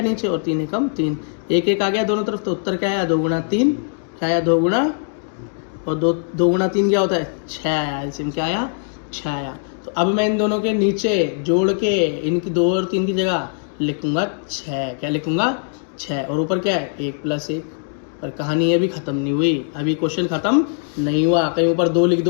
नीचे और 3 एकम 3, एक एक आ गया दोनों तरफ, तो उत्तर क्या आया 2 गुणा 3, क्या आया 2 गुणा, और 2 गुणा 3 क्या होता है 6 आया, एलसीएम क्या आया 6 आया। तो अब मैं इन दोनों के नीचे जोड़ के इनकी 2 और 3 की जगह लिखूंगा 6, क्या लिखूंगा 6, और ऊपर क्या है 1 + 1। पर कहानी अभी खत्म नहीं हुई, अभी क्वेश्चन खत्म नहीं हुआ, कहीं ऊपर 2 लिख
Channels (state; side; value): silent; right; 62 dB below the other